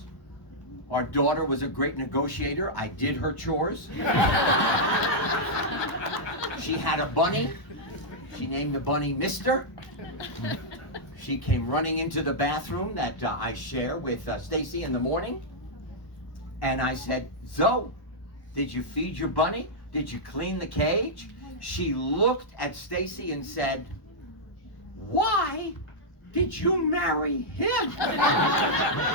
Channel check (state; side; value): late; right; 1.0 ms